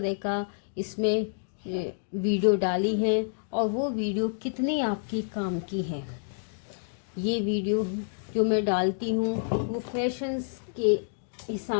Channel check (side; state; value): right; silent; digital silence